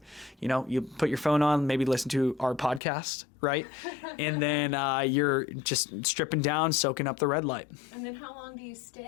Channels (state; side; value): drops out; right; at 2.8 s